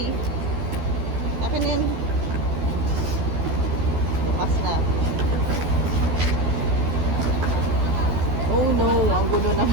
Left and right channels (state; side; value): late; left; 13 ms